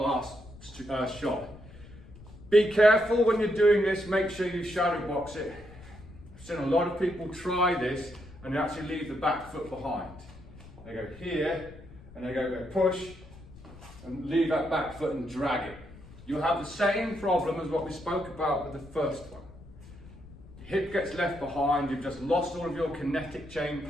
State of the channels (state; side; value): noise; left; rumble, 19 dB below the sound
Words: shot. Be careful when you're doing this, make sure you shadow box it. I've seen a lot of people try this and they actually leave the back foot behind. They go here, and they go push, and leave that back foot and drag it. You'll have the same problem as what we spoke about with the first one. Hip gets left behind, you've just lost all of your kinetic chain